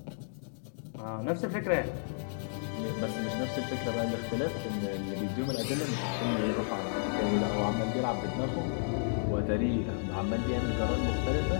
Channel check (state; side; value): silent; right; digital silence